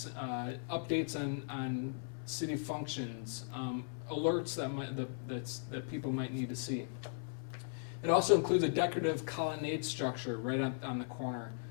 updates on city functions, alerts that people might need to see. It also includes a decorative colonnade structure right on the corner.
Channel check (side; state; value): right; silent; 53 dB below the other